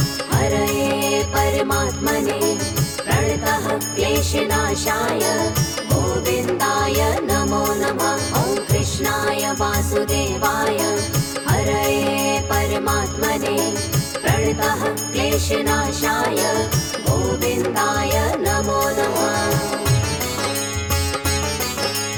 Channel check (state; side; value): identical; both; correlation 1.00